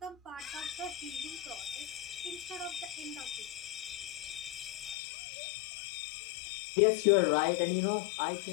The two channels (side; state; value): right; drops out; at 5.0 s